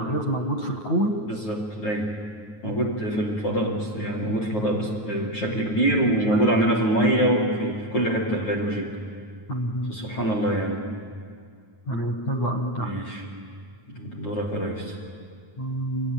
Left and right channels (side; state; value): right; late; 9.4 ms